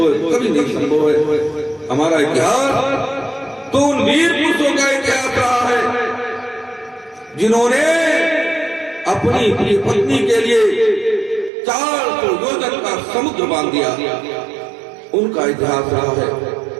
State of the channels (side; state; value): left; drops out; at 11.5 s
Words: है, कभी नहीं संभव है। हमारा इतिहास तो उन वीर पुरुषों का इतिहास रहा है जिन्होंने अपनी प्रिय पत्नी के लिए 400 योजन का समुद्र बांध दिया, उनका इतिहास रहा है।